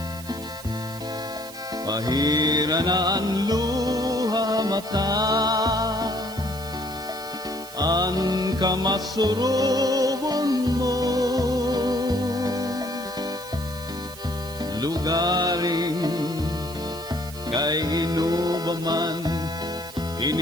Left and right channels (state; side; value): noise; right; hiss, 16 dB below the sound